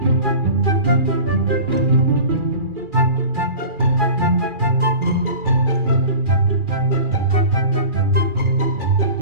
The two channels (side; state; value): left; late; 2.4 ms